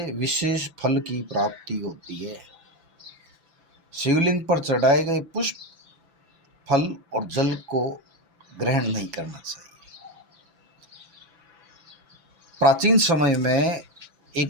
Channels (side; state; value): left; late; 6.0 ms